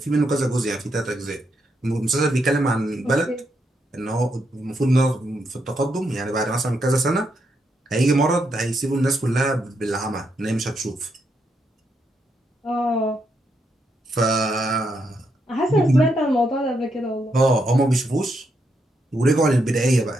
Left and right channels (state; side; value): normal; both; correlation 0.80